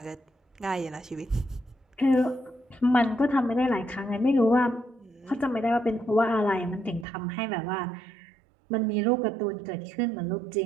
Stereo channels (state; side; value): drops out; left; at 7.1 s